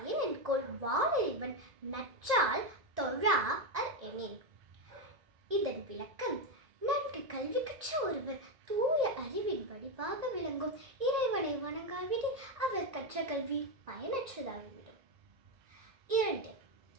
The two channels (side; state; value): left; late; 1.9 ms